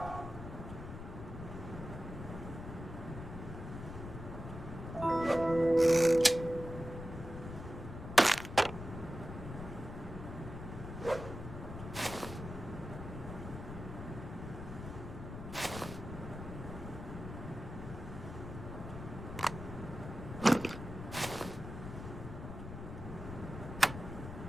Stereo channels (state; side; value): noise; left; rumble, 9 dB below the sound